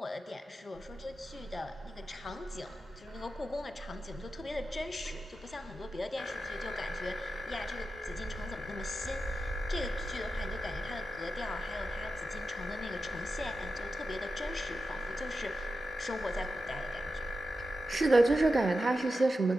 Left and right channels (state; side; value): normal; both; correlation 0.91